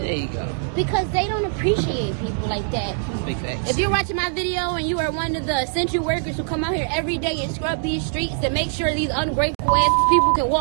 There you go. Because they don't appreciate people like that. Big facts. If you're watching my video and you are one of the essential workers who come out here every day and scrub these streets and make sure these ungrateful ass people can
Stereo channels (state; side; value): silent; left; digital silence